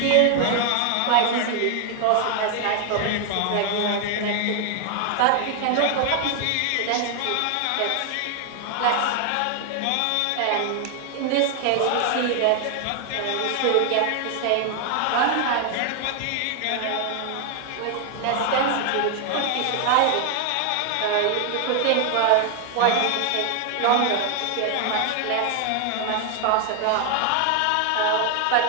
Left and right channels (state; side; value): different; both; correlation 0.00